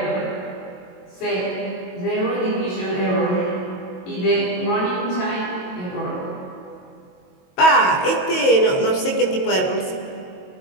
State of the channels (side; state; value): right; late; 22 ms